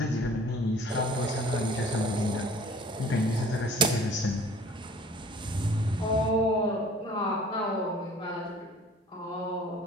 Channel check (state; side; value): normal; both; correlation 0.50